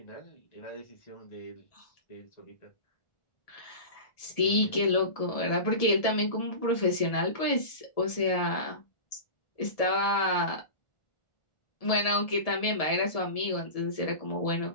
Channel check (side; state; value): right; late; 1.7 ms